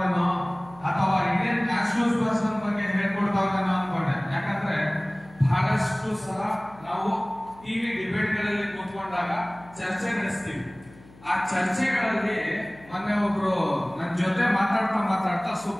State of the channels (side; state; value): left; noise; hum, 23 dB below the sound